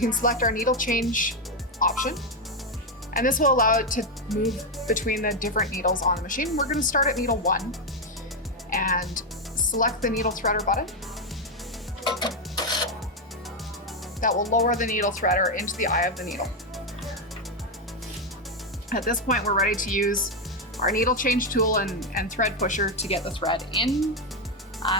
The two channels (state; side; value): normal; both; correlation 0.05